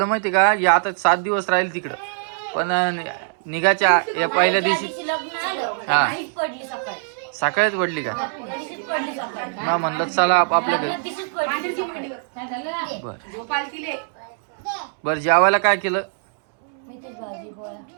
माहिती का या आता 7 दिवस राहील तिकडं पण निघाच्या या पहिल्या दिवशी हा सकाळीच पडली का. ना म्हणलं चला आपल्या घरी. बर जेवायला काय केलं.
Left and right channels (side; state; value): left; silent; 64 dB below the other